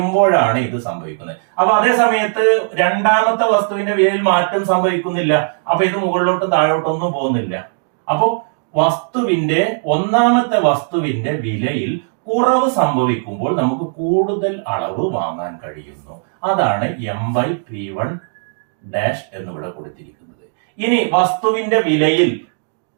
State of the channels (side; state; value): left; silent; 67 dB below the other